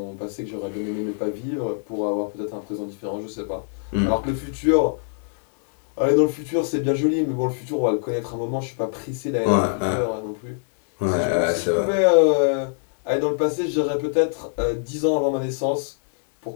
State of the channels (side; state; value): right; silent; 63 dB below the other